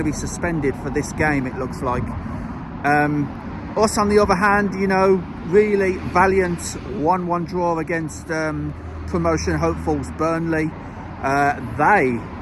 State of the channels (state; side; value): identical; both; correlation 1.00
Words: be suspended for this game, it looks like. Us, on the other hand, you know, really valiant 1-1 draw against promotion hopefuls Burnley. They